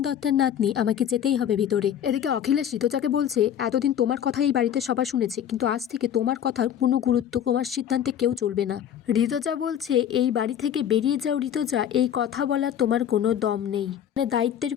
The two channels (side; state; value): right; quieter; 9.6 dB